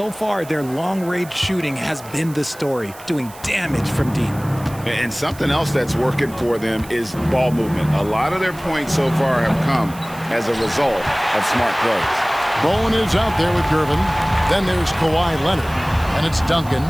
far, their long-range shooting has been the story, doing damage from deep. And something else that's working for them is ball movement. A lot of their points so far have come as a result of smart plays. Bowen is out there with Gervin. Then there's Kawhi Leonard. And it's Duncan.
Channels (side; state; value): right; noise; hiss, 19 dB below the sound